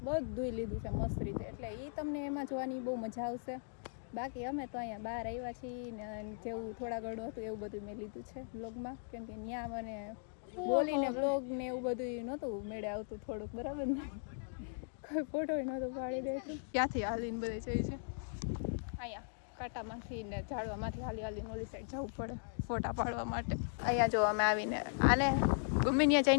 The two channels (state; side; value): silent; right; digital silence